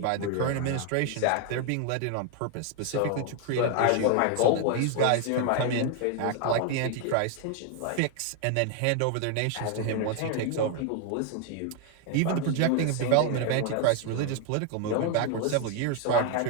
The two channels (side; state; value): both; different; correlation 0.01